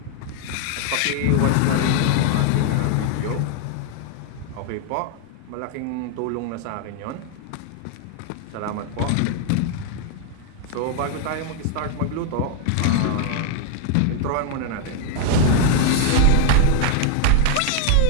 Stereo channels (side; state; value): both; different; correlation 0.00